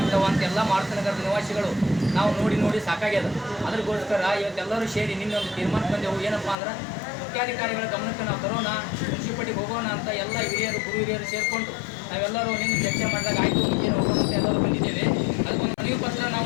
ಅಂತೆಲ್ಲ ಮಾರುತಿನಗರದ ನಿವಾಸಿಗಳು ನಾವು ನೋಡಿ ಸಾಕಾಗ್ಯದ. ಅದಕ್ಕೋಸ್ಕರ ಇವತ್ತೆಲ್ಲರೂ ಸೇರಿ ನಿನ್ನೊಂದು ತೀರ್ಮಾನ ಬಂದೆವು. ಏನಪ್ಪ ಅಂದ್ರೆ ಮುಖ್ಯಾಧಿಕಾರಿಗಳ ಗಮನಕ್ಕೆ ನಾವು ತರೋಣ, ಮುನ್ಸಿಪಾಲಿಟಿಗೆ ಹೋಗೋಣ ಅಂತ ಎಲ್ಲ ಹಿರಿಯರು ಗುರು ಹಿರಿಯರು ಸೇರಿಕೊಂಡು ನಾವೆಲ್ಲರೂ ನಿನ್ನೆ ಚರ್ಚೆ ಮಾಡಿದಾಗ ಆಯಿತು ಏನು ಹೋಗೋಣ ಅಂತ ಎಲ್ಲರೂ ಬಂದಿದ್ದೇವೆ. ಅದಕ್ಕೊಂದು ಮನವಿ ಪತ್ರ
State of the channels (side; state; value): right; drops out; at 6.6 s